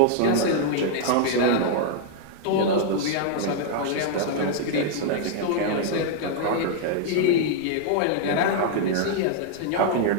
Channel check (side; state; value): both; different; correlation -0.01